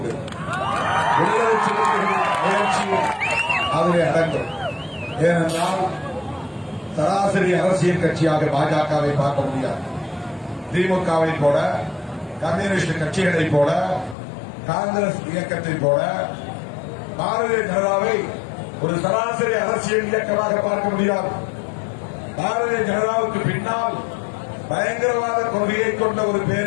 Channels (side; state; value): right; drops out; at 14.2 s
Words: விடுதலை சிறுத்தைகளின் முயற்சியும் அதிலே அடங்கும். ஏனென்றால் சராசரி அரசியல் கட்சியாக பாஜகவை பார்க்க முடியாது. திமுகவை போல, கம்யூனிஸ்ட் கட்சிகளை போல, காங்கிரஸ் இயக்கத்தை போல பாரதிய ஜனதாவை ஒரு சராசரி அரசியல் இயக்கமாக பார்க்க முடியாது. பாரதிய ஜனதாவுக்கு பின்னால் பயங்கரவாத கொள்கையை கொண்ட ஒரு